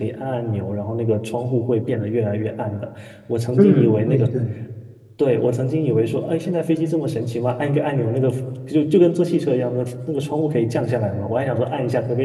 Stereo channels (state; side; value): identical; both; correlation 1.00